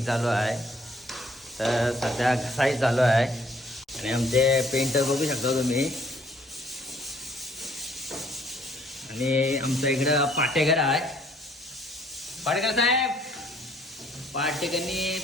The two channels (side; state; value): both; normal; correlation 0.62